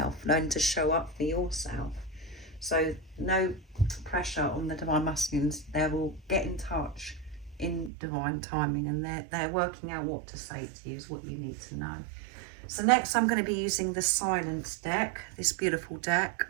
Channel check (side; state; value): left; drops out; at 7.9 s